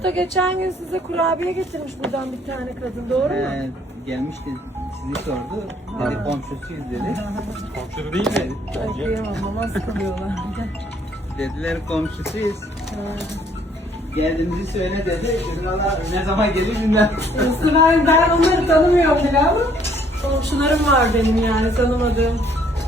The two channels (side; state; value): both; normal; correlation 0.63